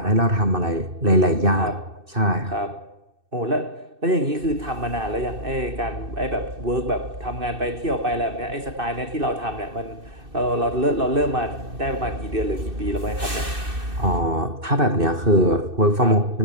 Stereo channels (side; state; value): left; late; 2.6 ms